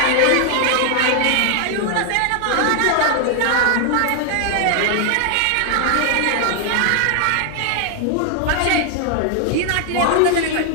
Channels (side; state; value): both; different; correlation 0.00